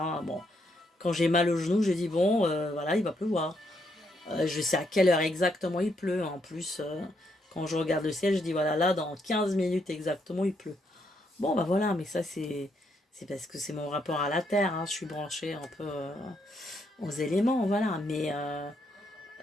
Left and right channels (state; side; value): normal; both; correlation 0.76